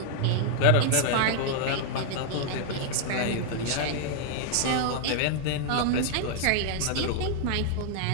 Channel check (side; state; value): both; different; correlation 0.00